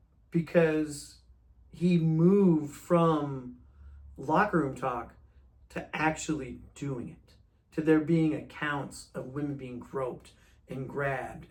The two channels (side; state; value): both; identical; correlation 1.00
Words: because he moved from locker room talk to actually doing it, to there being accounts of women being groped and grabbed.